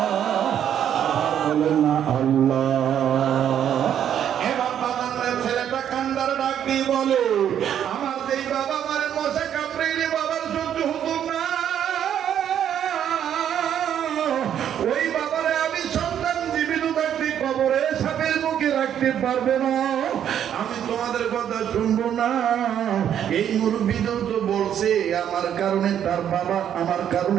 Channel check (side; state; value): left; quieter; 9.6 dB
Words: বলেন না আল্লাহ। এবার বাবার ছেলেটা কান্দার ডাক দিয়ে বলে আমার যেই বাবা মারে মশা কামড়াইলে বাবার সহ্য হতো না, ওই বাবারে আমি সন্তান জীবিত থাকতে কবরে সাপের মুখে রাখতে পারবে না, আমি তোমাদের কথা শুনবো না। এই মুরব্বীদেরও তো বলছে আমার কারণে তার বাবা, আমার